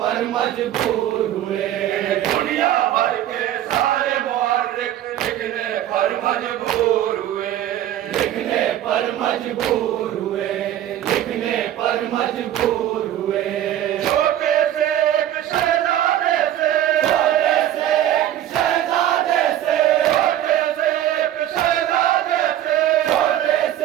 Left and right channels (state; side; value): quieter; left; 12.0 dB